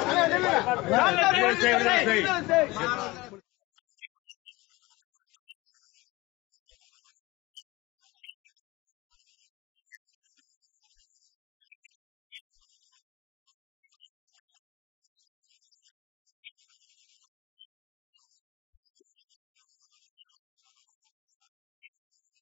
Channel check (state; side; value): quieter; right; 21.2 dB